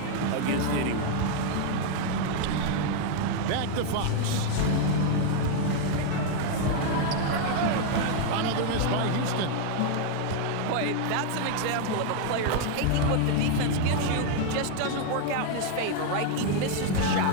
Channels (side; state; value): both; different; correlation 0.00